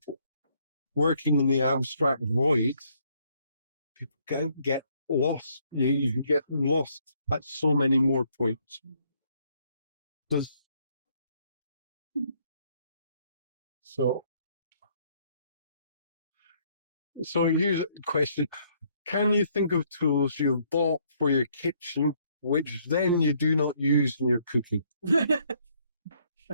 Working in the abstract void, people can get lost. You can get lost at so many more points. So here's a question. Can you think of tools you bought for your kitchen, which then you do not use in your cooking? The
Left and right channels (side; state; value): both; inverted; correlation -0.68